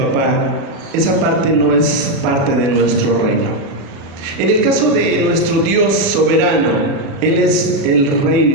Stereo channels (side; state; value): left; late; 37 ms